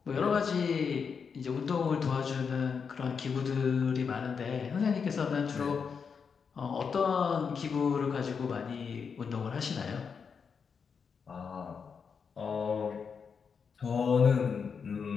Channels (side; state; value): right; quieter; 6.1 dB